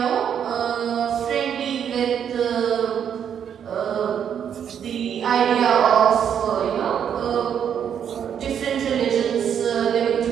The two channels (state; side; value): quieter; left; 8.5 dB